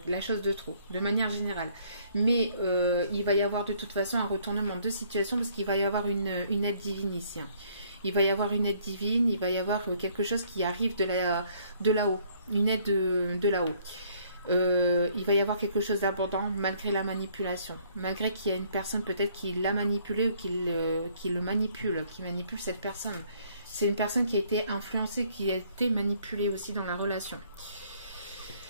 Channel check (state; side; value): inverted; both; correlation -0.63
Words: la chose de trop, de manière générale. Mais il va y avoir de toute façon un retournement de situation parce qu'il va y avoir une aide divine ici. Il va y avoir une aide divine, il va y avoir quelque chose qui arrive de là-haut, une aide de là-haut. Il va y avoir quelque chose d'abondant malgré la manipulation, malgré qu'il y a une personne peut-être qui l'a manipulé ou qui le manipule, qui manipule cette personne. C'est une personne qui a été influencée, qui a été manipulée aussi dans la relation.